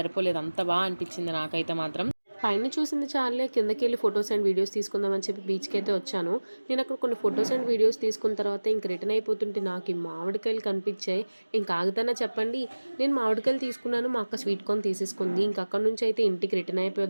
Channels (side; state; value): both; inverted; correlation -1.00